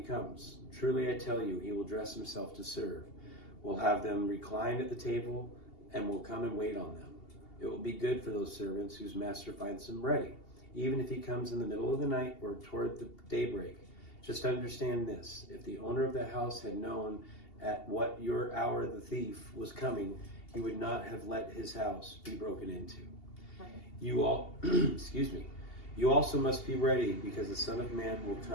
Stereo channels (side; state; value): right; late; 2.8 ms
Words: comes. Truly I tell you, he will dress himself to serve, will have them reclined at the table, and will come and wait on them. It will be good for those servants whose master finds them ready, even if he comes in the middle of the night or toward the daybreak. Just understand this: if the owner of the house had known at what your hour the thief was coming, he would not have let his house be broken into. Right. You all, excuse me. You also must be ready, because the Son of Man will